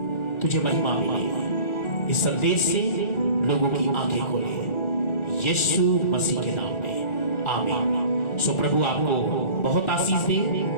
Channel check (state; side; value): late; right; 1.4 ms